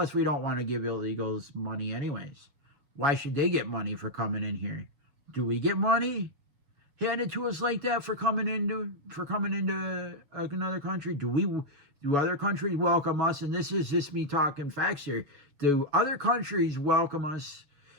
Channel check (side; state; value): left; late; 7.0 ms